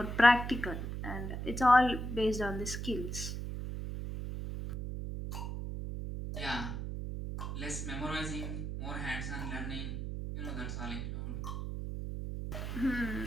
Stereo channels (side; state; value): right; noise; hum, 4 dB below the sound